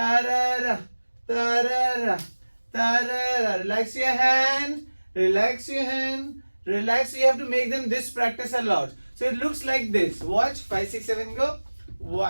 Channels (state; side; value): inverted; both; correlation -1.00